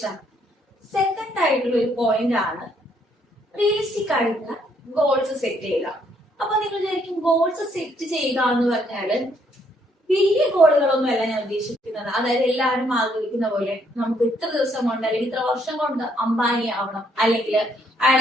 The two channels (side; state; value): both; normal; correlation 0.69